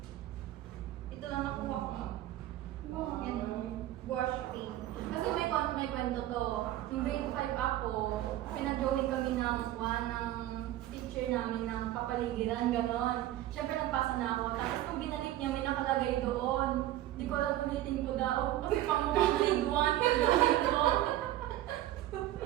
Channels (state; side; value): quieter; left; 14.1 dB